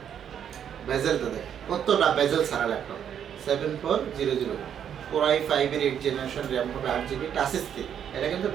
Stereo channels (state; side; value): quieter; left; 8.9 dB